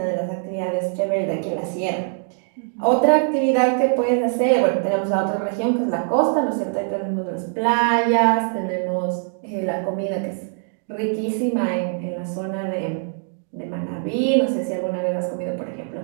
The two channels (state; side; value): silent; left; 64 dB below the other